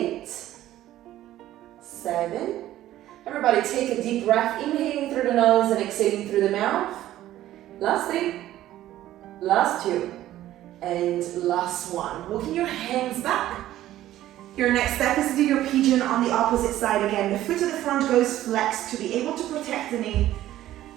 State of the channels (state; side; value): quieter; left; 13.8 dB